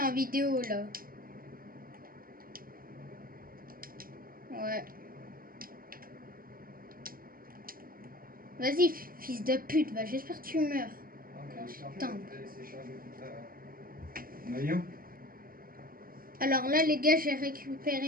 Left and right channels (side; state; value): left; late; 0.42 ms